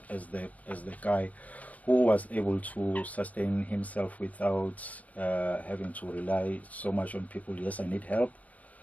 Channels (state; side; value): late; right; 0.070 ms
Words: as the guy who was able to sustain himself without having to rely so much on people. Yes, I need help.